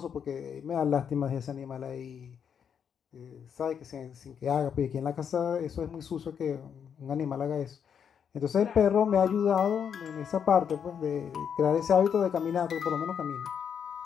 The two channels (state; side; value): quieter; right; 7.7 dB